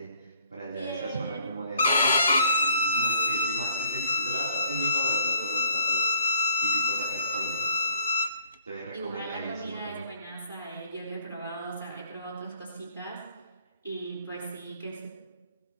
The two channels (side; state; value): both; inverted; correlation -0.61